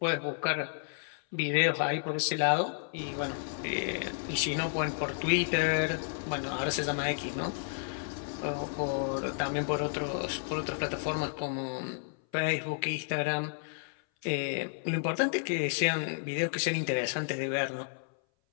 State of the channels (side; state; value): right; silent; 57 dB below the other